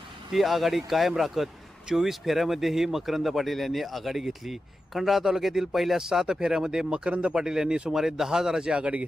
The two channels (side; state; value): both; normal; correlation 0.91